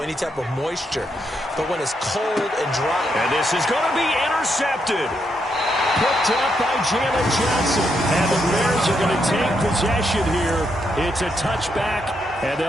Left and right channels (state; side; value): normal; both; correlation 0.79